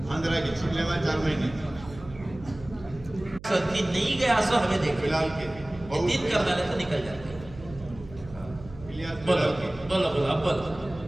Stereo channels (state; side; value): noise; right; hum, 17 dB below the sound